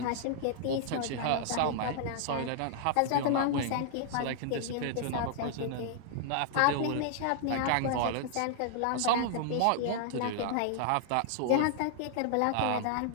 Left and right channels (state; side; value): different; both; correlation -0.01